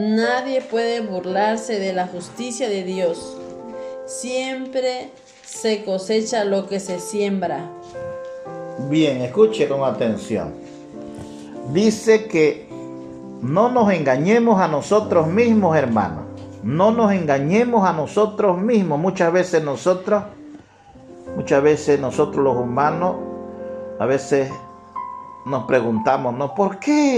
puede burlarse de la justicia de Dios. Siempre se cosecha lo que se siembra. Bien, escuche con atención. Dice que no nos engañemos a nosotros mismos, hermanos. No nos engañemos a nosotros mismos. Muchas veces nosotros los humanos, a veces nos preguntamos, ¿no? ¿Por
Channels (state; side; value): identical; both; correlation 1.00